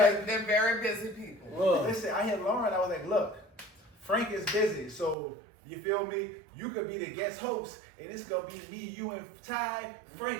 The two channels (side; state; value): left; drops out; at 5.2 s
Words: They're very busy people. Look. listen, I hit Lauren. I was like, look, Frank is busy, so You feel me? You could be the guest host, and it's gonna be me, you, and Ty.